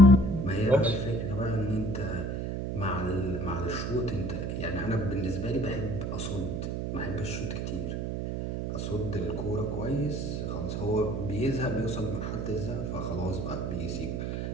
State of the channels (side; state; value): right; noise; hum, 2 dB below the sound